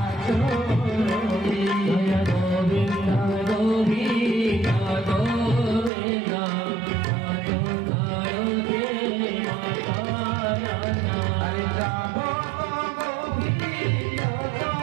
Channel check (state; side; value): drops out; left; at 5.9 s